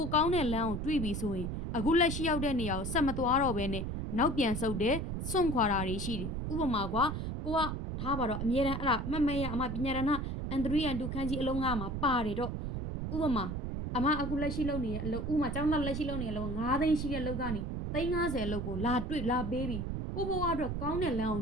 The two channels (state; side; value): noise; right; rumble, 3 dB below the sound